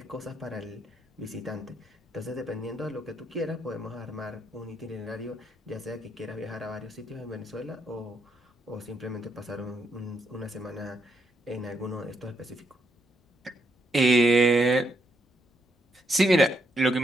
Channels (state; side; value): normal; both; correlation 0.77